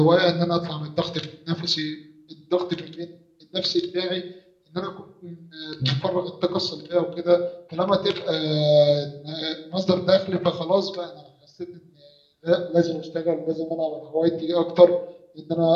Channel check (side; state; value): both; identical; correlation 1.00